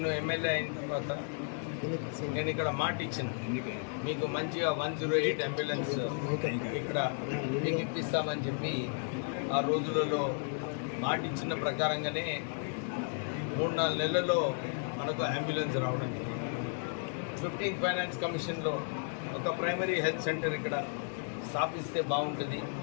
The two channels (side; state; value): right; silent; 55 dB below the other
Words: ఎమ్మెల్యే అయిన తర్వాత నేను ఇక్కడ మాట ఇచ్చిన, మీకు మంచిగా 108 అంబులెన్స్ ఇక్కడ మీకు ఇప్పిస్తామని చెప్పి ఆ రోజులలో మాట ఇచ్చిన ప్రకారంగానే 3-4 నెలల్లో మనకు అంబులెన్స్ రావడం జరిగింది. 15 ఫైనాన్స్ కమిషన్లో ఒక ప్రైమరీ హెల్త్ సెంటర్ ఇక్కడ స్థాపిస్తే బాగుంటుంది.